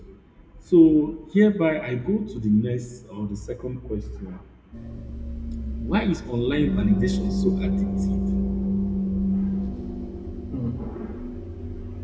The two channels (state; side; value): identical; both; correlation 1.00